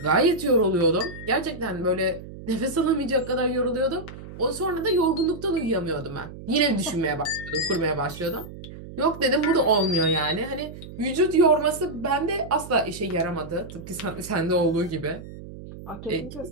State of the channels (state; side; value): noise; right; hum, 14 dB below the sound